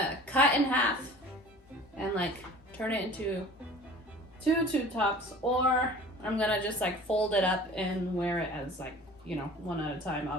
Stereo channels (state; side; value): normal; both; correlation 0.44